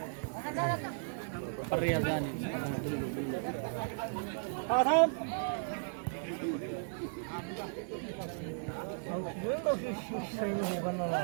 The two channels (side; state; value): left; silent; digital silence